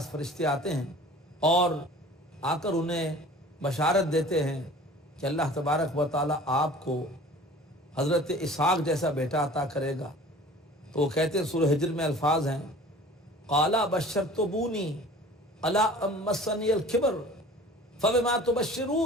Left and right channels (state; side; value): normal; both; correlation 0.45